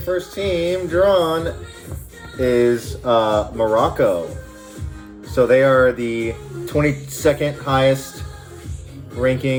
first team drawn is Morocco. So they are the 22nd highest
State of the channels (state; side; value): identical; both; correlation 1.00